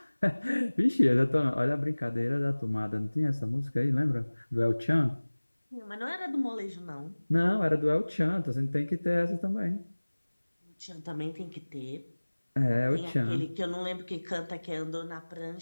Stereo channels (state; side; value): inverted; both; correlation -1.00